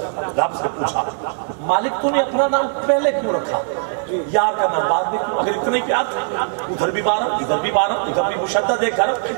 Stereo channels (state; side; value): silent; left; digital silence